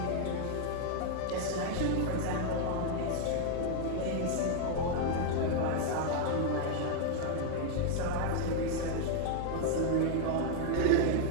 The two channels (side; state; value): both; different; correlation 0.00